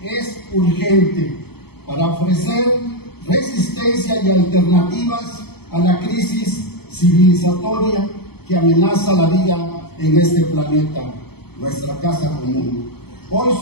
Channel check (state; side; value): late; right; 0.96 ms